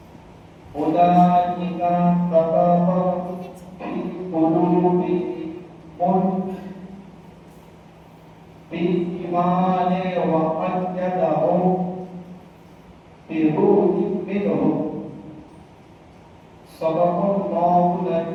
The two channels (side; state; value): both; identical; correlation 1.00